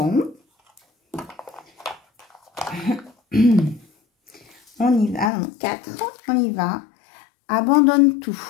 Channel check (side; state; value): right; drops out; at 5.3 s